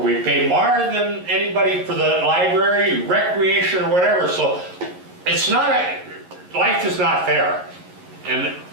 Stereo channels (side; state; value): left; late; 11 ms